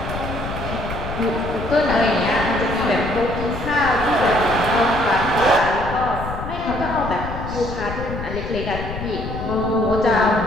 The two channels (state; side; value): noise; left; rumble, 7 dB below the sound